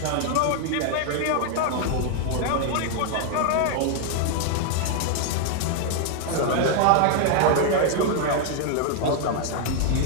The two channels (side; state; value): both; different; correlation 0.00